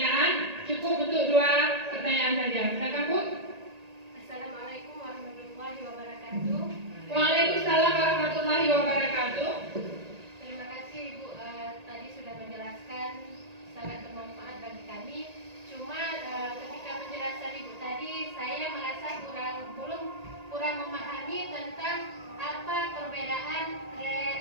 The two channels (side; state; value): left; late; 1.8 ms